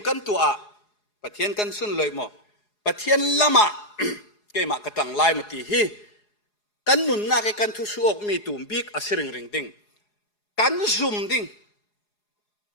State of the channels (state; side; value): late; right; 4.8 ms